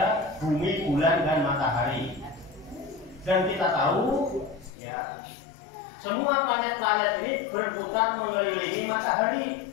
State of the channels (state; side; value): drops out; right; at 4.7 s